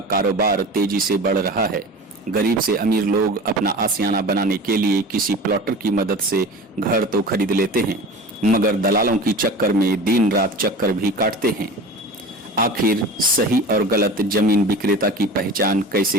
कारोबार तेजी से बढ़ रहा है। गरीब से अमीर लोग अपना आशियाना बनाने के लिए किसी प्लॉटर की मदद से घर तो खरीद लेते हैं, मगर दलालों की चक्कर में दिन रात चक्कर भी काटते हैं। आखिर सही और गलत जमीन विक्रेता की पहचान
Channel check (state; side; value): normal; both; correlation 0.35